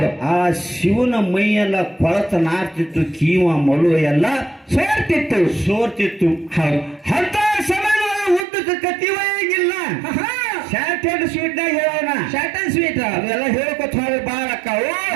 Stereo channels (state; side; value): drops out; left; at 8.5 s